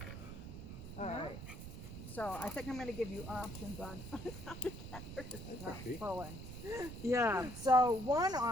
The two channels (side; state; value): right; noise; rumble, 10 dB below the sound